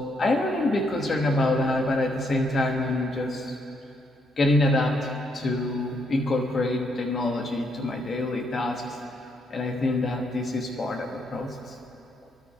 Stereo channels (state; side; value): normal; both; correlation 0.75